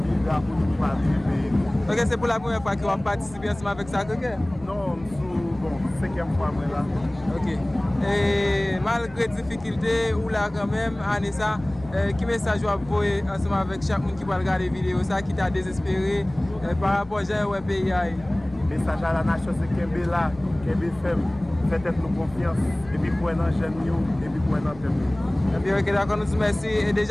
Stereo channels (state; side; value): noise; left; rumble, 19 dB below the sound